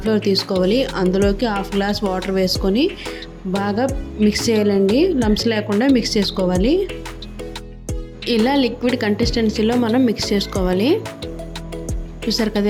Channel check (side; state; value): both; identical; correlation 1.00